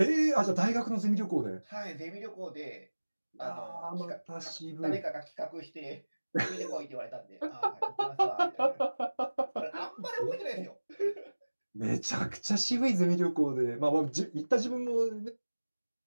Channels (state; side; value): inverted; both; correlation -1.00